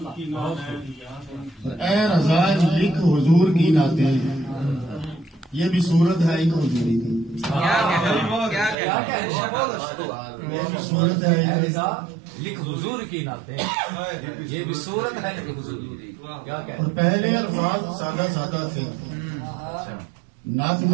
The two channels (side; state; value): left; drops out; at 8.8 s